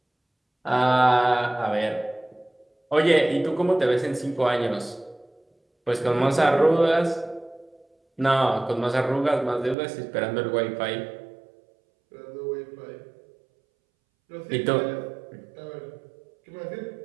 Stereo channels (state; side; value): drops out; left; at 9.8 s